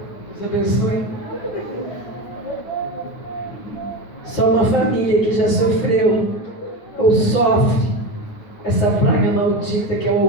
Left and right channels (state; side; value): late; right; 9.5 ms